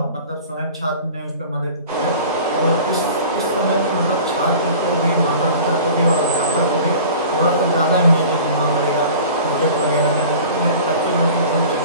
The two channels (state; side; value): inverted; both; correlation -0.42